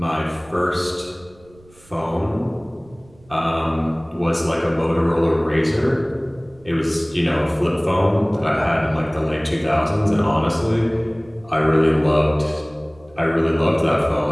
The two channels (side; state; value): right; noise; rumble, 27 dB below the sound